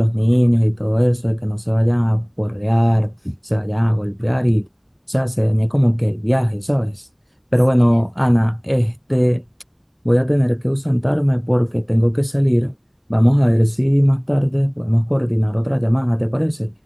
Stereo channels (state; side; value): identical; both; correlation 1.00